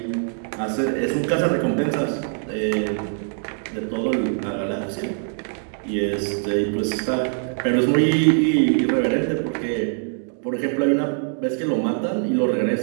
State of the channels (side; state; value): left; silent; 64 dB below the other